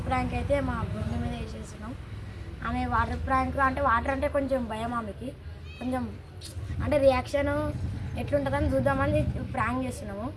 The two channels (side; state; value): both; identical; correlation 1.00